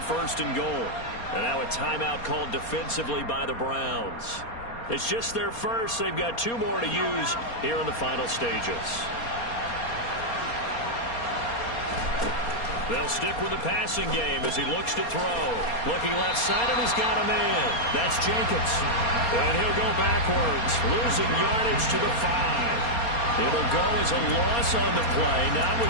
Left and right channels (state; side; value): late; right; 4.3 ms